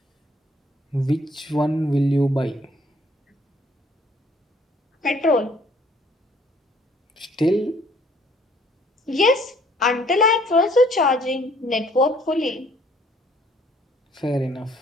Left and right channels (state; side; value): normal; both; correlation 0.60